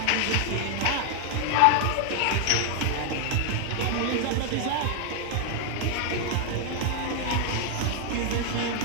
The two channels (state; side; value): different; both; correlation 0.00